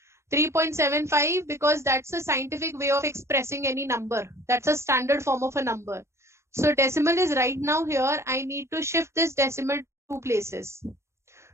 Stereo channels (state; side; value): late; left; 0.13 ms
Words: 3.75 because that's a scientific way of expressing any number. That's a standard form of a number. So decimal is right now here. I need to shift this decimal 2 places.